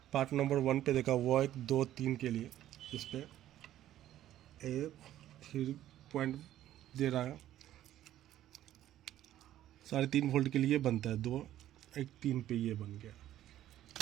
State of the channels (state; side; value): quieter; left; 12.8 dB